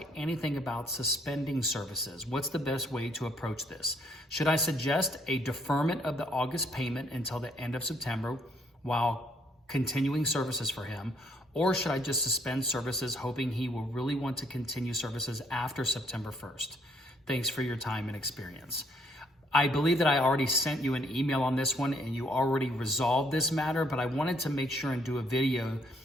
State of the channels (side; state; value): both; normal; correlation 0.67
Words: anything about suspending services. What's the best way to approach this? Should I suggest a deferment of the August payment until the end of September while continuing services for him? Or should I just suspend services hoping he will really want to continue services after September 1st? Thanks for your time and experience. I believe that I already sent you an email on this one and you already resolved this matter, but I wanted to make sure and do a video